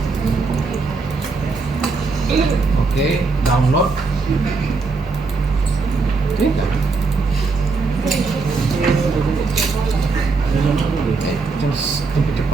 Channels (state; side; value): quieter; left; 4.2 dB